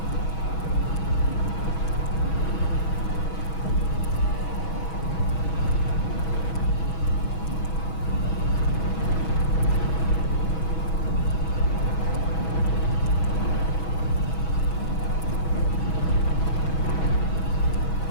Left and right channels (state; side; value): late; right; 6.2 ms